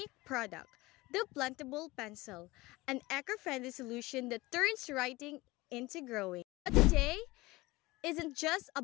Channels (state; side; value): quieter; right; 20.8 dB